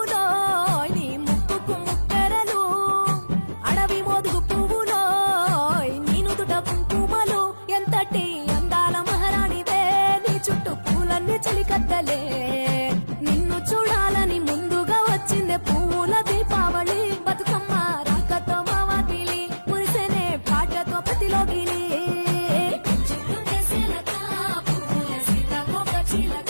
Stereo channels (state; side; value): inverted; both; correlation -1.00